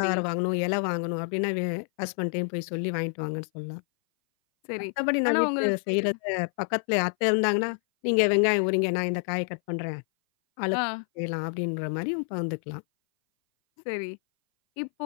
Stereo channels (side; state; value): right; silent; 57 dB below the other